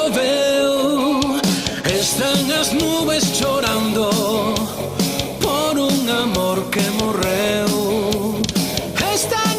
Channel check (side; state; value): both; identical; correlation 1.00